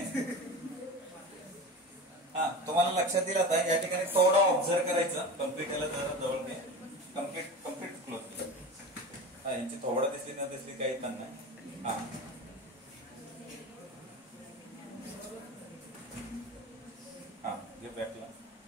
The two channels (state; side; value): normal; both; correlation 0.30